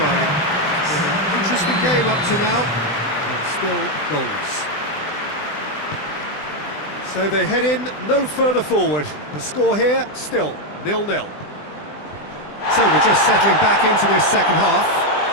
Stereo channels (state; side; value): late; right; 20 ms